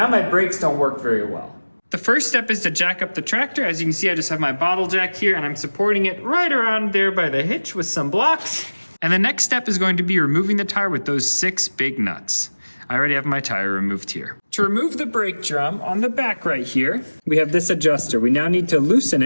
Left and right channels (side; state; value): both; inverted; correlation -1.00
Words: my brakes don't work very well. The first step is to jack up the tractor. As you can see, I just have my bottle jack here and I'm supporting it right around there by the hitch with some blocks. And the next step is going to be removing the tire with those 6 big nuts. I already have my tire removed here. To remove the brake drum on the back right here, we have this adjuster. We now need to loosen